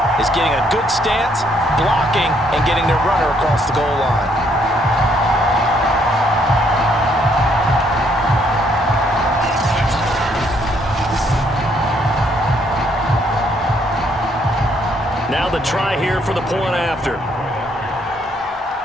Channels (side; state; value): both; normal; correlation 0.69